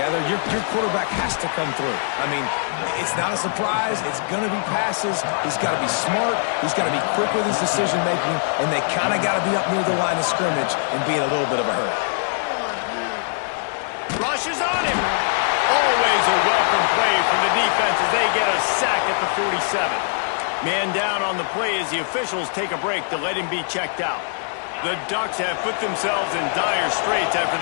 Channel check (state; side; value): silent; right; digital silence